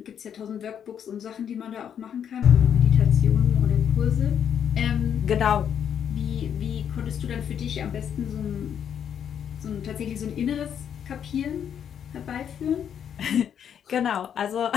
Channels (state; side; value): quieter; right; 8.6 dB